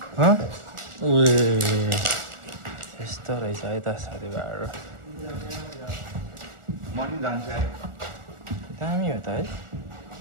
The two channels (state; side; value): late; left; 1.4 ms